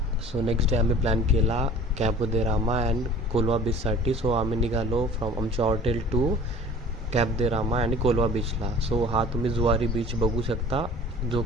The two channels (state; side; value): normal; both; correlation 0.45